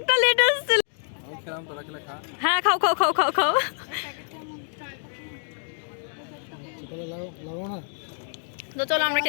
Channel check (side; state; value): right; silent; digital silence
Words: লেটে এসেছিল। হ্যাঁ, খাও খাও খাও খাও খাও। তো চলো আমরা